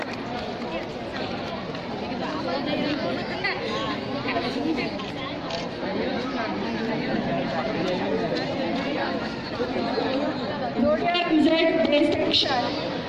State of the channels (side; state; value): both; identical; correlation 1.00